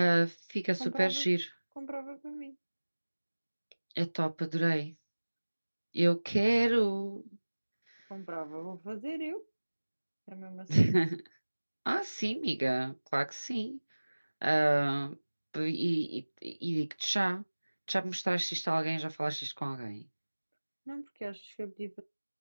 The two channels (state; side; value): inverted; both; correlation -1.00